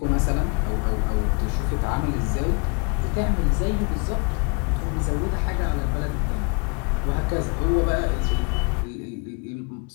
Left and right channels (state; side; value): quieter; right; 33.0 dB